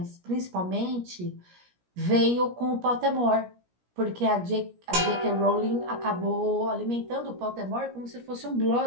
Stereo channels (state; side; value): late; left; 17 ms